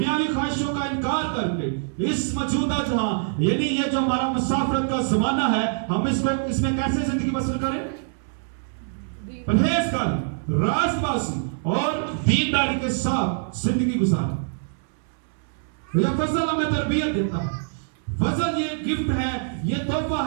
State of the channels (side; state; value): left; silent; 62 dB below the other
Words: خواہشوں کا انکار کر کے اس موجودہ جہاں یعنی یہ جو ہمارا مسافرت کا زمانہ ہے ہم اس میں کیسے زندگی بسر کریں؟ پرہیزگاری، راست بازی اور دینداری کے ساتھ زندگی گزاریں. یہ فضل ہمیں تربیت دیتا ہے. فضل یہ گفٹ ہے، یہ تحفہ